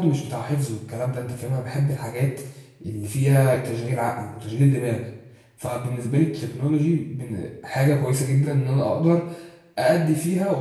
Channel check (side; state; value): both; identical; correlation 1.00